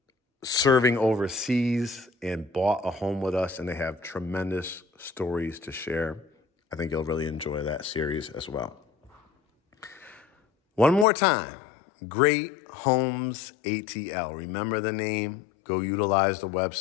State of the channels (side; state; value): right; drops out; at 11.1 s